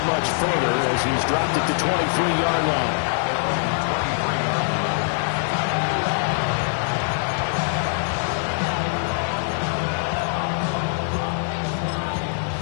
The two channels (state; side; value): silent; right; digital silence